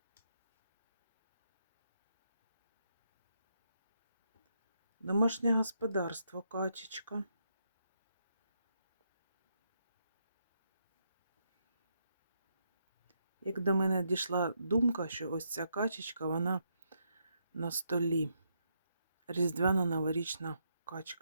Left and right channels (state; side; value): inverted; both; correlation -0.78